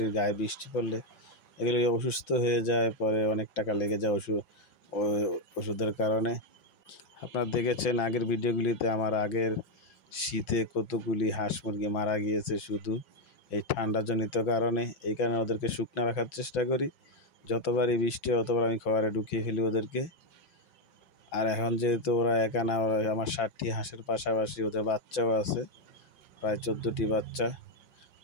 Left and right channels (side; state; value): right; late; 5.6 ms